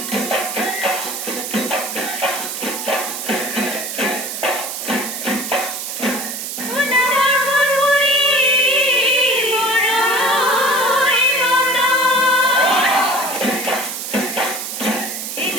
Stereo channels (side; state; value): right; noise; hiss, 6 dB below the sound